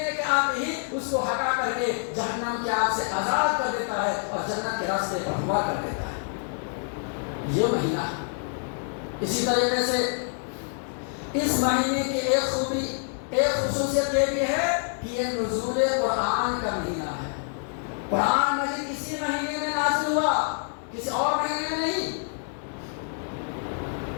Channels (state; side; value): silent; right; 57 dB below the other